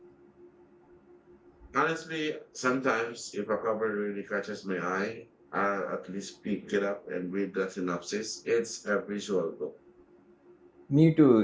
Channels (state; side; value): identical; both; correlation 1.00